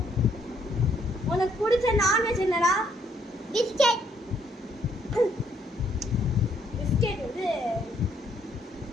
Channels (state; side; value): normal; both; correlation 0.69